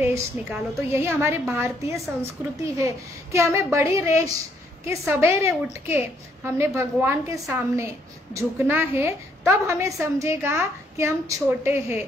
निकालो। तो यही हमारी भारतीय संस्कृति है कि हमें बड़ी रेश के सवेरे उठ के हमने भगवान के सामने झुकना है, तब हमें समझेगा कि हम छोटे हैं।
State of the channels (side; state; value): both; normal; correlation 0.69